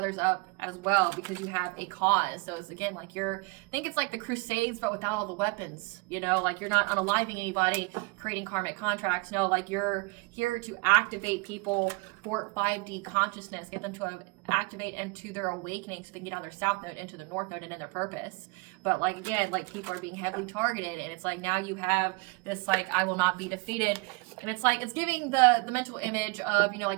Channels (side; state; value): left; quieter; 28.9 dB